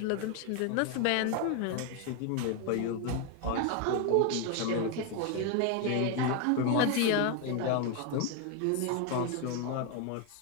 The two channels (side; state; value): both; different; correlation 0.01